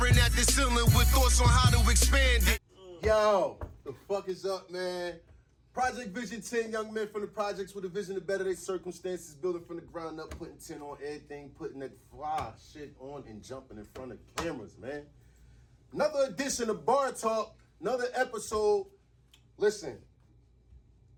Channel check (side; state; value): both; identical; correlation 1.00